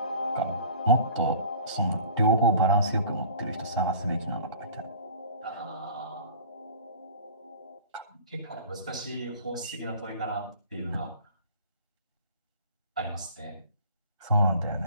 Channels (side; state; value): both; inverted; correlation -0.44